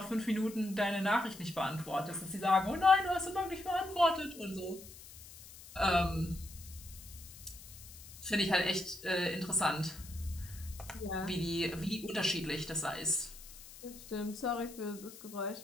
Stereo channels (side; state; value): left; noise; hiss, 17 dB below the sound